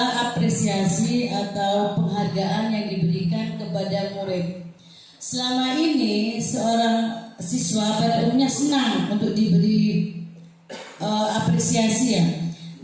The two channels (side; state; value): both; identical; correlation 1.00